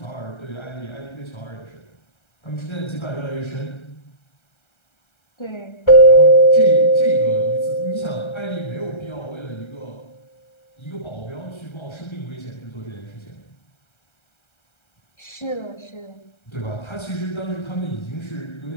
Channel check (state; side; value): late; right; 1.3 ms